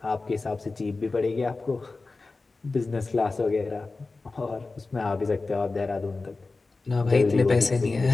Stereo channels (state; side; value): quieter; right; 3.7 dB